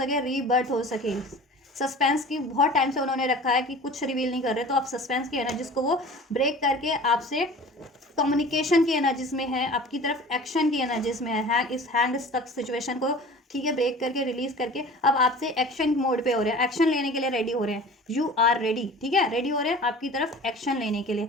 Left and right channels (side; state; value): both; normal; correlation 0.41